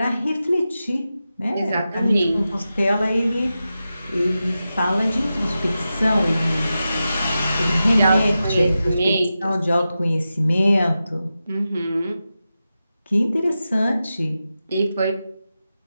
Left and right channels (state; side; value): inverted; both; correlation -0.92